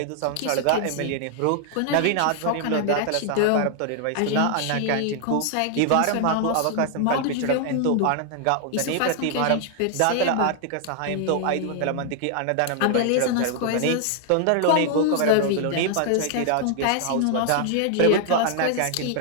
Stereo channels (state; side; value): different; both; correlation 0.00